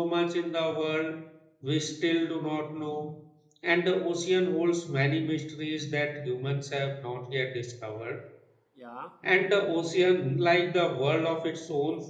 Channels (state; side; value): identical; both; correlation 1.00